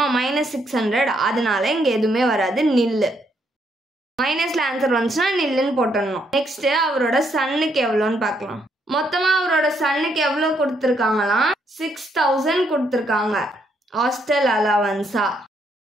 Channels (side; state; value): both; normal; correlation 0.74